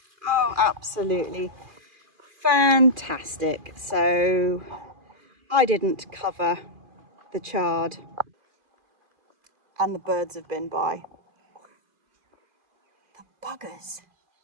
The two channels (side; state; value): left; late; 2.4 ms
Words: Oh, absolutely fantastic. So I didn't cover the chard and the birds have been by. The buggers.